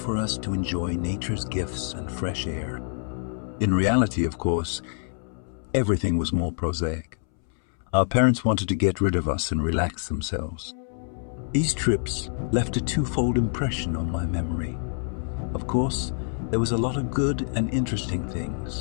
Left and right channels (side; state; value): right; silent; 61 dB below the other